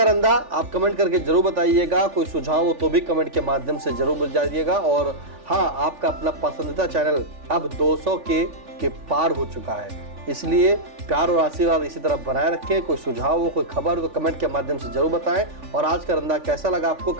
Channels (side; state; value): left; late; 3.5 ms